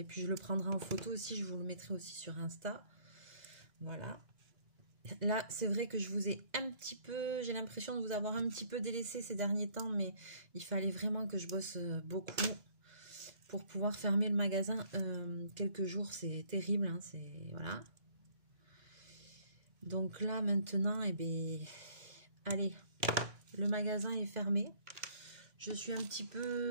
puis je le prendrai en photo aussi. Je vous le mettrai aussi sur Insta. Voilà. Là, c'est vrai que je vous ai un petit peu... J'ai l'impression de vous avoir un petit peu délaissé ces derniers temps. Mais il fallait vraiment que je bosse beaucoup pour pouvoir fermer le magasin quelques jours. C'est terrible. Hein, voilà. Donc là, maintenant, eh bien, allez, le magasin est fermé. Je suis un petit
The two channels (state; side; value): late; left; 2.9 ms